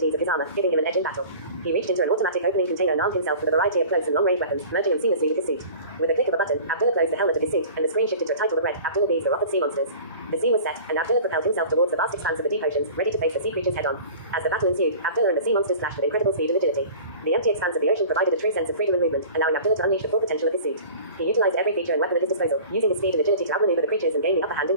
of his armor, giving him an edge in battle. He reached into an automatic opening container and armed himself with a variety of close and long-range weapons, merging them seamlessly with his suit. With a click of a button, Abdullah closed the helmet of his suit, and the screen shifted to a title that read, Abdullah Bees the Wrath of Sea Monsters. The scene was set, and Abdullah propelled himself towards the vast expanse of the deep oceans, ready to face the sea creatures head-on. As the battle ensued, Abdullah and the sea monsters clashed with incredible speed and agility. The empty expanse of the ocean provided a true sense of freedom and movement, allowing Abdullah to unleash the full potential of his suit. He utilized every feature and weapon at his disposal, using his speed and agility to outmaneuver the creatures and gain the upper hand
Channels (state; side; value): inverted; both; correlation -0.42